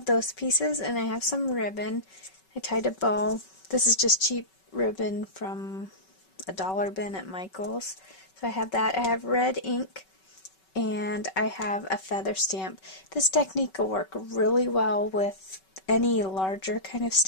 those pieces, and I have some ribbon. I tied a bow. This is just cheap ribbon from a dollar bin at Michael's. So I have that. I have red ink, and I have a feather stamp. This technique will work really well with any larger kind of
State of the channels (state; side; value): late; right; 5.3 ms